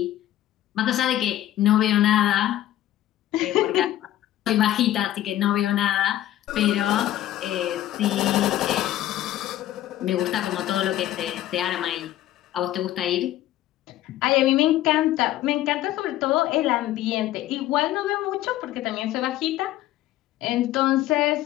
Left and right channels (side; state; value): right; quieter; 13.7 dB